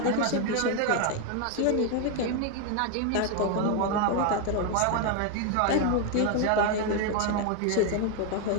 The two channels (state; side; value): different; both; correlation 0.01